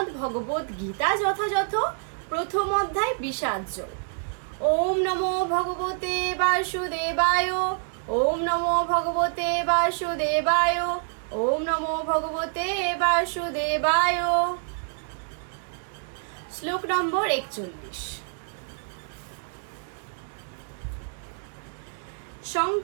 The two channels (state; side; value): silent; left; 59 dB below the other